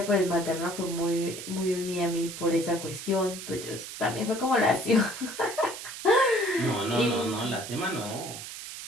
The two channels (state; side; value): noise; right; hiss, 10 dB below the sound